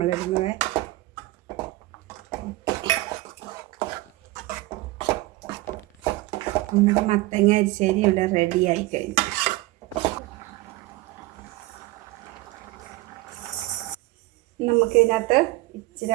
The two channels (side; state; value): left; quieter; 19.6 dB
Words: നമ്മുടെ മത്തങ്ങ എരിശ്ശേരി ഇവിടെ റെഡി ആയി കഴിഞ്ഞു. നമുക്കിതിനകത്ത് ഇച്ചിരി